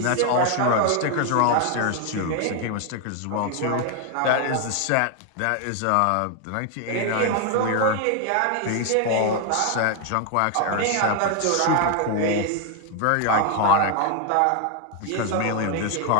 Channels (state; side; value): different; both; correlation 0.00